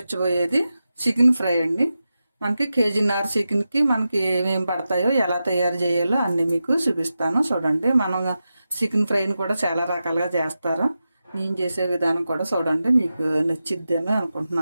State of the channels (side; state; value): both; inverted; correlation -0.91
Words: చికెన్ ఫ్రై అండి. మనకి కేజీన్నర చికెన్కి మనకి ఏమేమి పడతాయో, ఎలా తయారు చేయాలో అన్నీ మీకు చూపిస్తాను. చూడండి, మనం చికెన్ ఫ్రైని కూడా చాలా రకాలుగా చేస్తారు. నేను చేసే విధానం కూడా చూడండి, మీకు నచ్చిద్దేమో